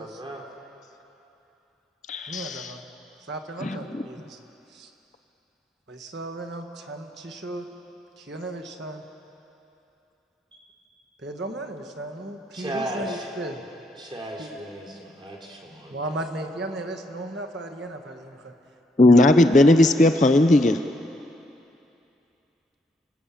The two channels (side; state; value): both; normal; correlation 0.74